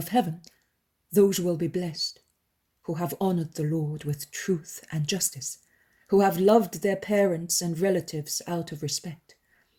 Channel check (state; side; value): identical; both; correlation 1.00